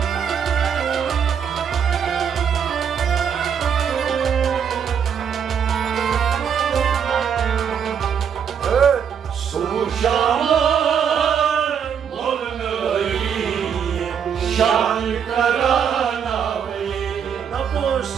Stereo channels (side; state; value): left; quieter; 7.6 dB